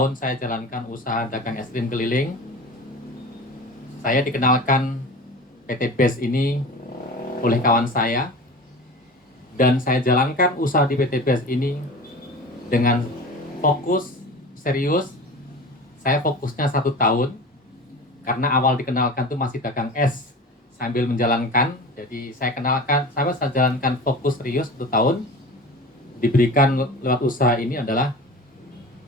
saya jalankan usaha dagang es krim keliling. Saya dikenalkan PTBS ini oleh kawan saya, dan saya jalankan usaha di PTBS ini dengan fokus, serius. Saya fokusnya 1 tahun, karena awal dikenalkan tuh masih dagang es sambil menjalankan. Jadi saya jalankan fokus serius 1 tahun. Diberikan lewat usaha ini adalah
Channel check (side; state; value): both; normal; correlation 0.35